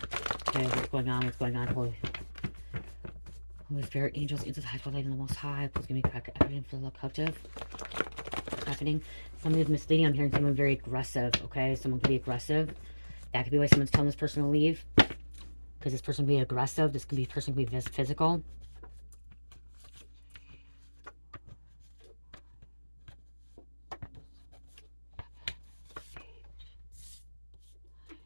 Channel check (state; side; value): inverted; both; correlation -1.00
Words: Okay, what's going on? What's going on? Holy Spirit, angels, angels, high, light, and the Most High. Please give me crack everything for the captive. What's happening? Somebody's misleading. I'm hearing someone very aggressive, okay? Someone could be aggressive. That could be why someone's telling this person to leave. Because this person could be aggressive. This could be person could be physical.